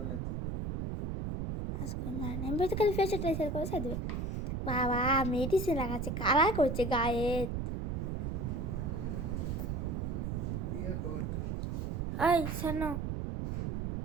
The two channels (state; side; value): noise; right; rumble, 2 dB below the sound